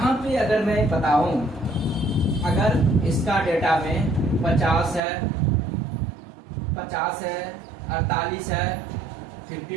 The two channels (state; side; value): drops out; left; at 5.0 s